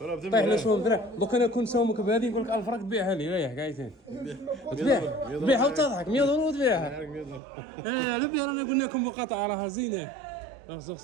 طيح له شوم درهم، دوك انا كون سومك بهذه نقول لك 1000 راك تبيعها لي ريح قايتين. تبيعها وتضحك 100 دولار تبيعها. لبي رانا قلنا لكم مقاطعة راها زينة.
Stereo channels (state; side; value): drops out; left; at 7.4 s